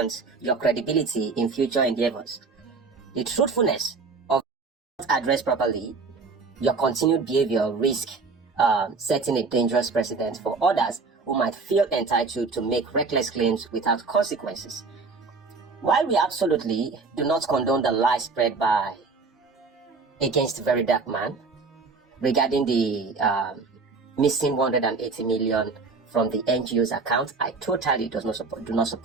your credibility in future endeavors? The truthfulness of not addressed properly, your continued behavior risk setting a dangerous precedent for others who might feel entitled to make reckless claims without consequences. While we absolutely do not condone the lies spread against Very Dark Man regarding the missing 180 million from the NGO's account, I totally do not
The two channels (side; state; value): left; quieter; 4.3 dB